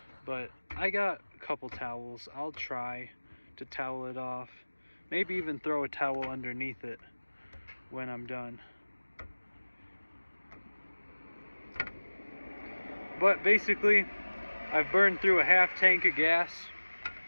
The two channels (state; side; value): inverted; both; correlation -1.00